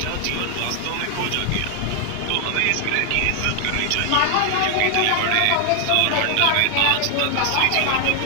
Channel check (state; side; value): different; both; correlation 0.00